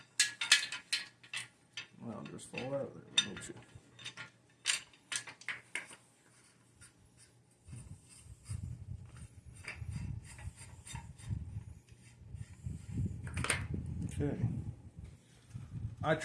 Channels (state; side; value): identical; both; correlation 1.00